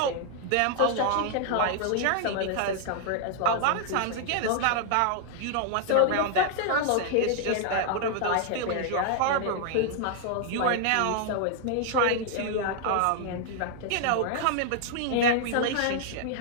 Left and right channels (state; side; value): different; both; correlation 0.00